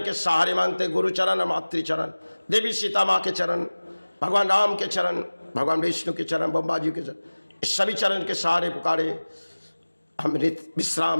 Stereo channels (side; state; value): both; inverted; correlation -1.00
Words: के सहारे मांगते, गुरु चरण और मातृ चरण, देवी सीता माँ के चरण, भगवान राम के चरण, भगवान विष्णु के चरण, ब्रह्मा जी के चरण, इस सभी चरण के सहारे पुकारे हम